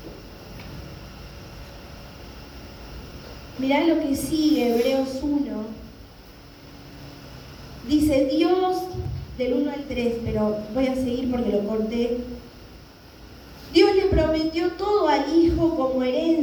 Mirá lo que sigue, Hebreos 1. Dice Dios, del 1 al 3, pero voy a seguir porque lo corté. Dios le prometió todo al Hijo como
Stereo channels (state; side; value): identical; both; correlation 1.00